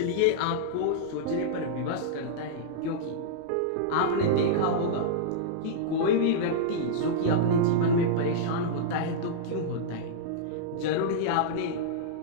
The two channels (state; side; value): different; both; correlation -0.02